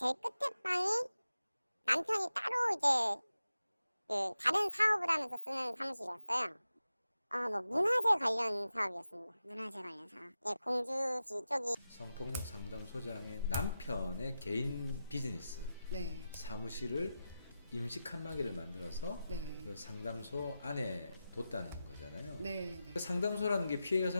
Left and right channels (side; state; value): both; inverted; correlation -0.92